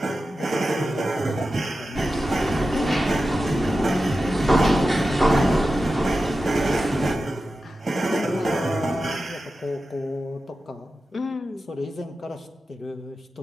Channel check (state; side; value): normal; both; correlation 0.92